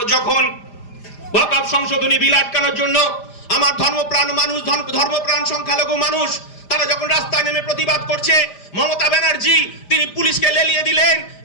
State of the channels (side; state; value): right; late; 5.0 ms